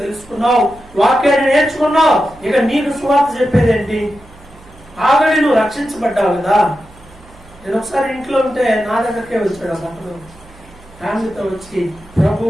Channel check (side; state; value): right; noise; hum, 24 dB below the sound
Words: తెలుసుకున్నావు, వాక్యాన్ని నేర్చుకున్నావు, ఇక నీకు సువార్త చెప్పేది ఏంటి? ఆల్రెడీ నువ్వు రక్షించబడ్డావు కదా. నేను ఒకసారి ఇంట్లో ఉంటే నా దగ్గరకే వచ్చాడు అతను, ఫ్యామిలీతో వచ్చి